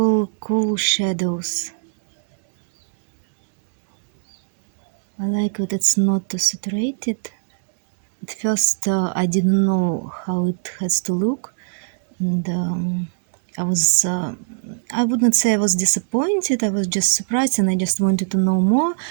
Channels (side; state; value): left; silent; digital silence